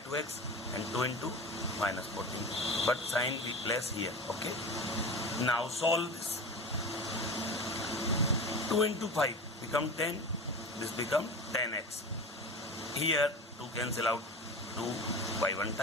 and 2 into minus 14. But sign we place here. Okay. Now solve this. 2 into 5 become 10. This become 10x. Here 2 cancel out 2 by one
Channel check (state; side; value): normal; both; correlation 0.30